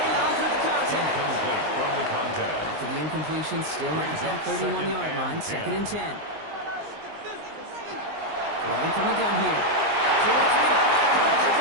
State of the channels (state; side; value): late; left; 19 ms